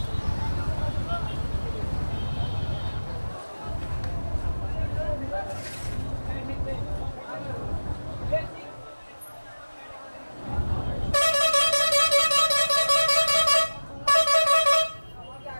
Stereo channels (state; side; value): inverted; both; correlation -1.00